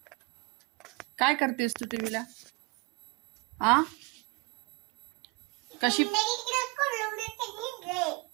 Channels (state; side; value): quieter; left; 25.8 dB